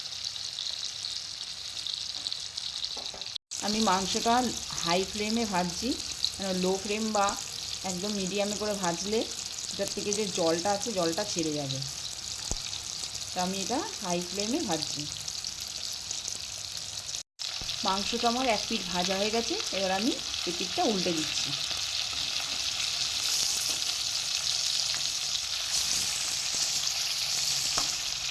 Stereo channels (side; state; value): both; identical; correlation 1.00